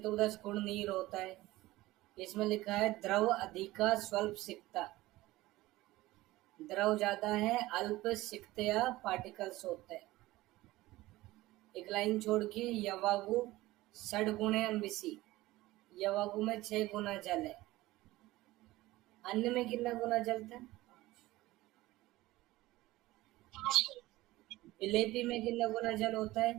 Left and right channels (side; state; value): left; quieter; 18.1 dB